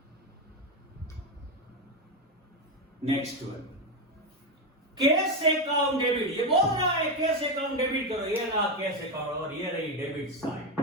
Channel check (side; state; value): both; normal; correlation 0.10